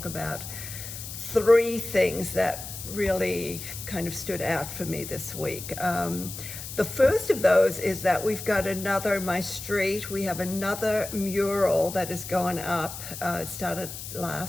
about 3 things that really kind of stood out for me this week. The first of those is that we've got my street, we have another mural that is going up. It started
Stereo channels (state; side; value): noise; left; hiss, 10 dB below the sound